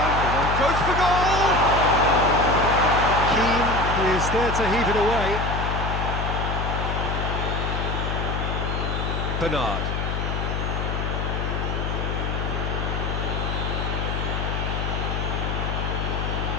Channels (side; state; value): left; noise; hum, 1 dB below the sound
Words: Goes for goal! Keane is there to heave it away. Bernard.